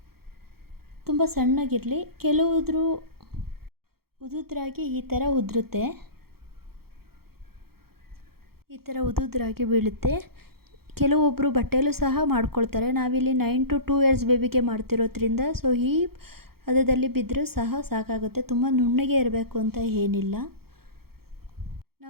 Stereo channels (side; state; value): left; late; 0.94 ms